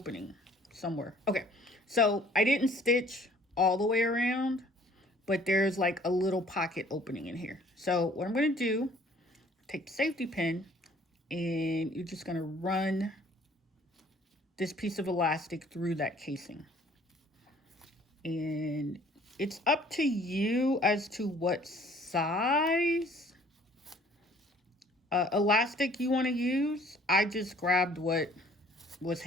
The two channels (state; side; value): normal; both; correlation 0.56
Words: somewhere. Okay, so I didn't stitch all the way around, but there's like a little pocket opening in here. So what I'm going to do, take the safety pin and you're just going to run this piece of elastic through that casing. And it's up to you as to what size elastic you want to use. I just grabbed what was